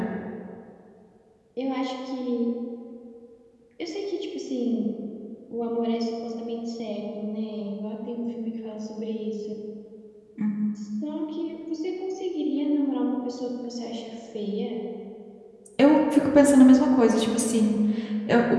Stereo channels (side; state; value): both; identical; correlation 1.00